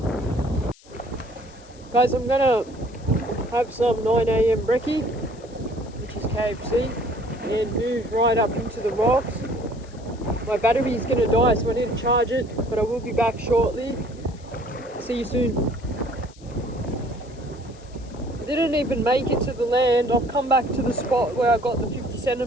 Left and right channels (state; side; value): noise; left; hiss, 26 dB below the sound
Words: Guys, I'm gonna have some 9 AM brekkie, which is KFC, and move right up into the rocks. My battery is gonna die, so I need to charge it, but I will be back shortly. See you soon. I didn't even make it to the land. I've come back to the spot where I got the